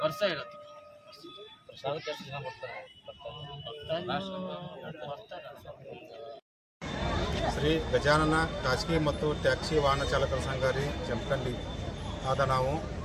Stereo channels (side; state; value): both; identical; correlation 1.00